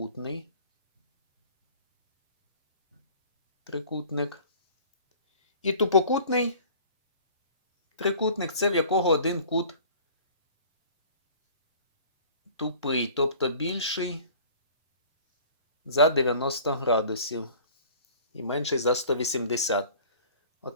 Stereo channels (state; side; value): inverted; both; correlation -0.47